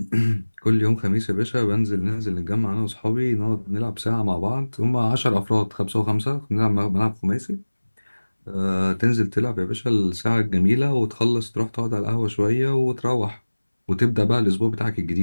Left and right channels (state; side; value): inverted; both; correlation -1.00